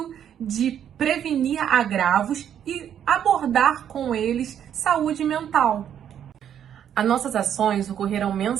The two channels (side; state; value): left; quieter; 9.4 dB